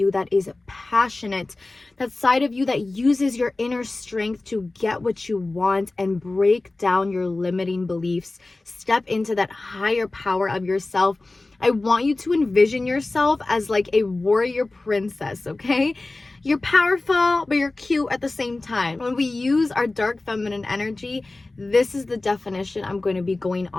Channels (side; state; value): right; quieter; 3.1 dB